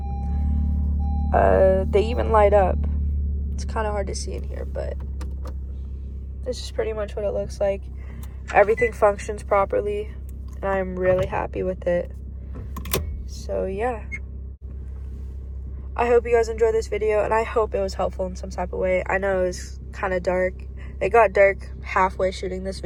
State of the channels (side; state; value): both; identical; correlation 1.00